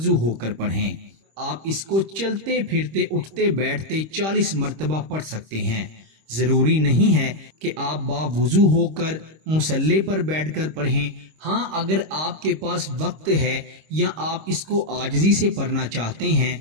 ہو کر پڑھیں۔ آپ اس کو چلتے پھرتے، اٹھتے بیٹھتے 40 مرتبہ پڑھ سکتے ہیں۔ ضروری نہیں ہے کہ آپ باوضو ہو کر مصلی پر بیٹھ کر پڑھیں۔ ہاں، اگر آپ کے پاس وقت ہے یا آپ اس کو عاجزی سے پڑھنا چاہتے ہیں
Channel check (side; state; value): left; late; 26 ms